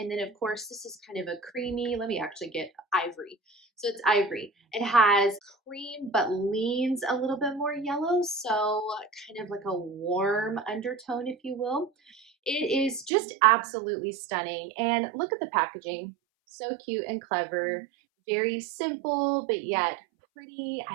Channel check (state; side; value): drops out; left; at 13.1 s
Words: then of course this is kind of a creamy, let me actually get ivory. So it's ivory. It has cream but leans a little bit more yellow, so kind of like a warm undertone, if you will. It is just absolutely stunning. And look at the packaging. So cute and clever. Very simple, but yet pretty.